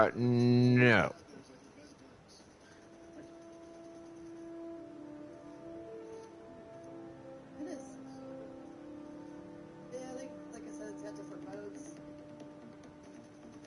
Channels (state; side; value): identical; both; correlation 1.00